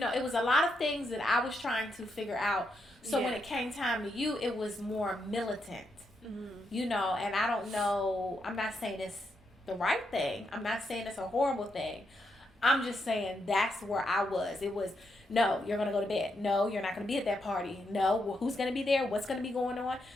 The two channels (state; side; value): normal; both; correlation 0.81